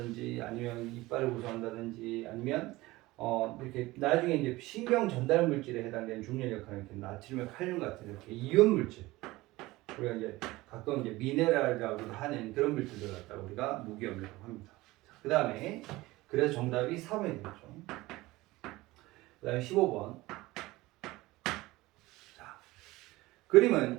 아니면 이빨을 구성한다든지 아니면 이렇게 나중에 이제 신경 전달 물질에 해당되는 중요한 역할을 이렇게 나트륨, 칼륨 같은 이렇게 이온 물질, 우리가 이제 가끔 이제 미네랄이라고도 하는 그런 물질들 갖다가 우리가 무기염이라고 합니다. 그 다음에 그래서 정답이 4번이 되겠죠. 그 다음에 15번. 자,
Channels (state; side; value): quieter; left; 19.5 dB